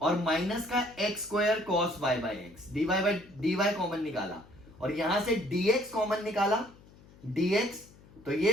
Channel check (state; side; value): noise; left; hum, 24 dB below the sound